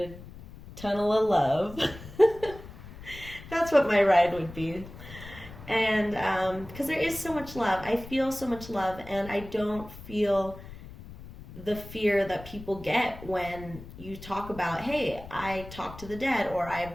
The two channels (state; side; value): noise; left; rumble, 15 dB below the sound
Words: tunnel of love. That's what my ride would be. And because there is so much love. I feel so much love, and I don't feel the fear that people get when you talk about, hey, I talk to the dead, or